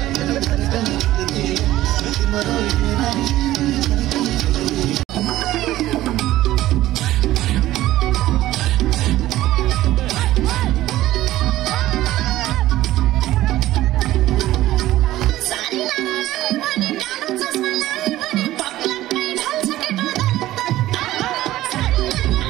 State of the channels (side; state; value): left; quieter; 15.2 dB